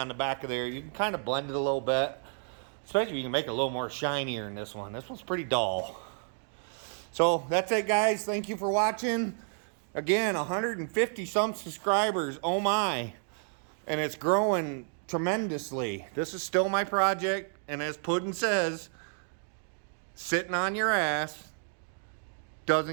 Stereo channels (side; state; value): left; silent; 57 dB below the other